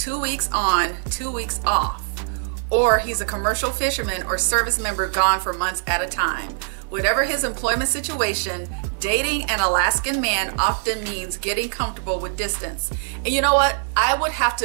weeks on, 2 weeks off, or he's a commercial fisherman or service member gone for months at a time. Whatever his employment situation, dating an Alaskan man often means getting comfortable with distance. And you know what? I would have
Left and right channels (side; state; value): left; silent; 64 dB below the other